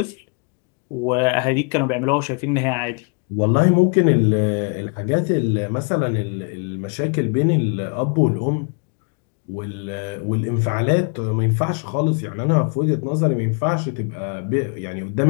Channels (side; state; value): right; quieter; 38.2 dB